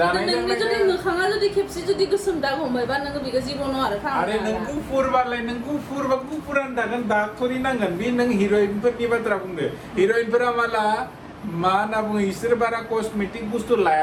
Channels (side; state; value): both; identical; correlation 1.00